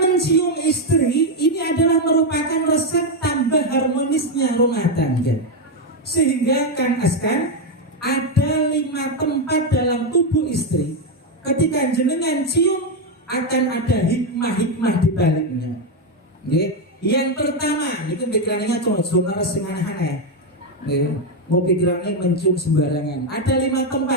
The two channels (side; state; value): both; normal; correlation 0.05